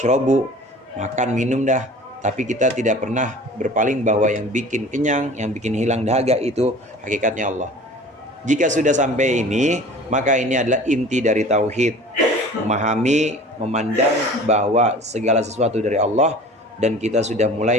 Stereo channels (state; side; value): normal; both; correlation 0.43